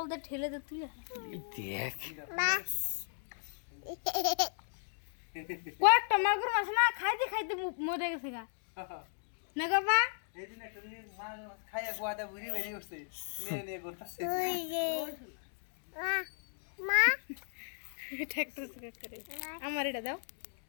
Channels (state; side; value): silent; right; digital silence